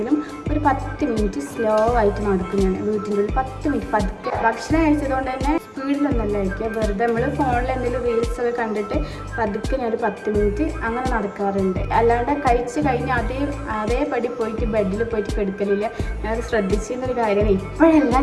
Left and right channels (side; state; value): both; identical; correlation 1.00